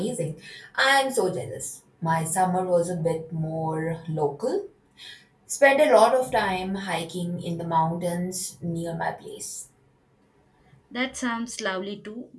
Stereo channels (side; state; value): both; identical; correlation 1.00